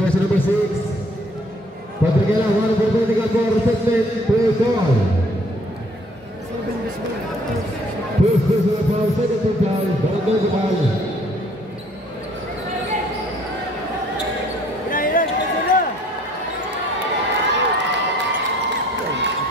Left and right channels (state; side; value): normal; both; correlation 0.60